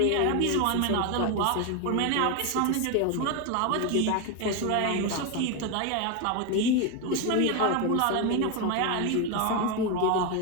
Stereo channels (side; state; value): both; different; correlation 0.02